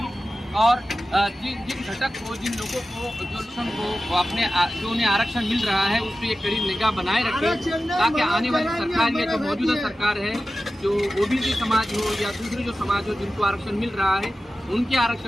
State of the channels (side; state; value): both; normal; correlation 0.94